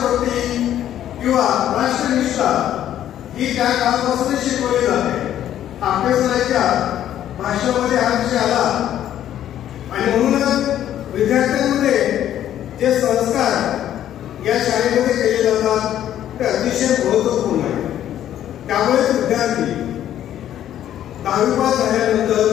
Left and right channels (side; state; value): right; quieter; 11.3 dB